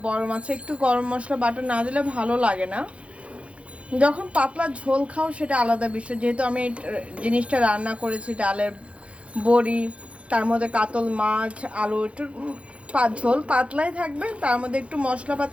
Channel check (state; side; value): late; left; 0.062 ms